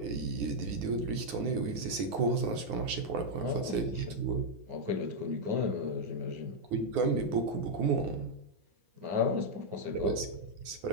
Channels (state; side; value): late; left; 9.6 ms